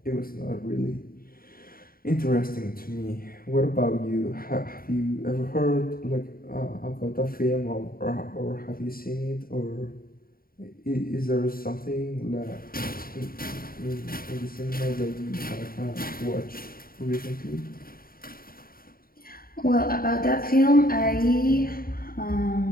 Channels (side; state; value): right; late; 0.43 ms